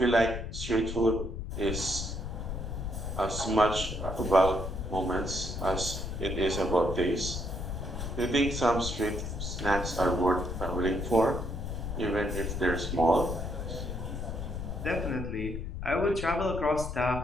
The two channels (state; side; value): noise; left; rumble, 6 dB below the sound